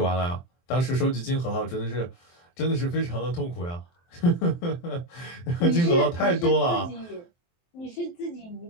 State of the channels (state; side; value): late; right; 23 ms